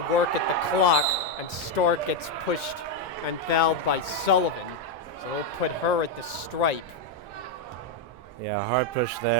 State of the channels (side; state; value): both; normal; correlation 0.03